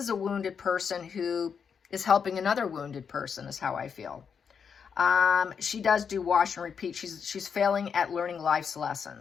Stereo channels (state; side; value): quieter; right; 6.7 dB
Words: a wounded person who is helping another wounded person, is how I feel. She does do wash and repeat. She's failing at learning life's